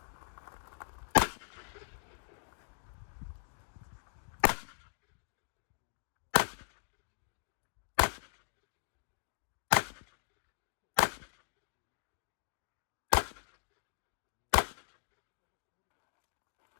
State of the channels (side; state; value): right; silent; digital silence